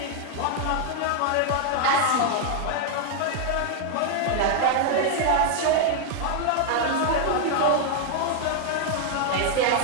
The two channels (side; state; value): both; different; correlation 0.00